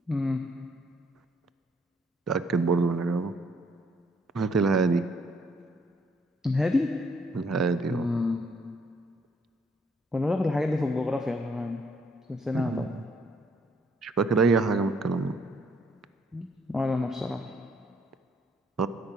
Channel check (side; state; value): both; normal; correlation 0.68